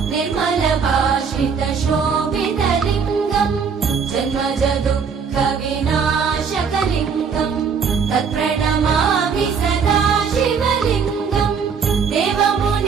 निर्मलभाषितशोभितलिङ्गम् जन्मजदुःखविनाशकलिङ्गम् तत्प्रणमामि सदा शिवलिङ्गम्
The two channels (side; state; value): left; quieter; 6.1 dB